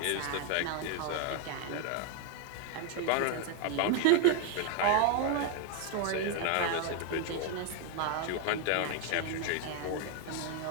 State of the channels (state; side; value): different; both; correlation 0.01